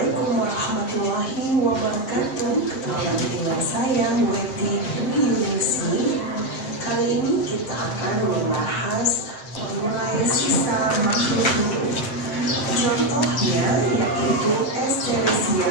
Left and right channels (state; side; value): late; right; 7.6 ms